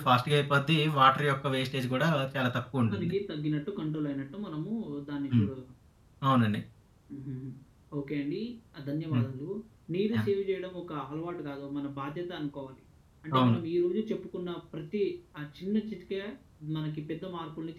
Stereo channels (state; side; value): identical; both; correlation 1.00